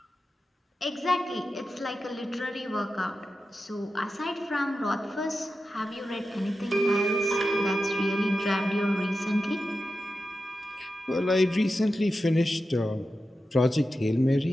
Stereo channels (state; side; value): normal; both; correlation 0.91